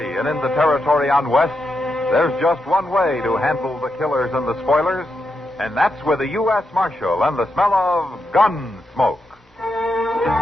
and in the territory on West, there's just one way to handle the killers and the spoilers, and that's with a U.S. Marshal and the smell of gun smoke.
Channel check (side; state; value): both; normal; correlation 0.85